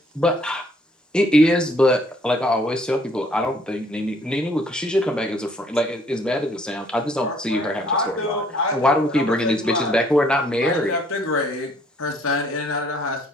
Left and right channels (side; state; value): both; normal; correlation 0.62